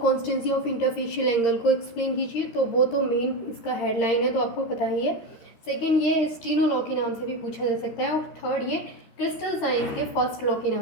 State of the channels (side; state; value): right; late; 13 ms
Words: constancy of interfacial angle को एक्सप्लेन कीजिए, तो वो तो मेन इसका हेडलाइन है, तो आपको पता ही है। सेकेंड, ये स्टीनो लॉ के नाम से भी पूछा जा सकता है, और थर्ड ये क्रिस्टल साइंस के फर्स्ट लॉ के